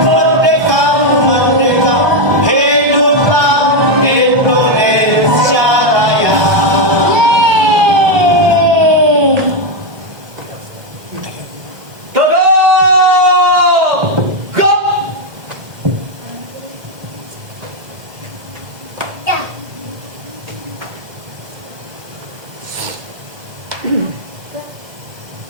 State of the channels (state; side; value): late; left; 1.6 ms